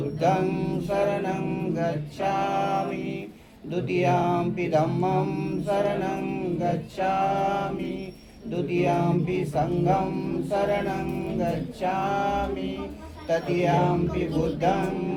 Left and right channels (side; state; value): both; identical; correlation 1.00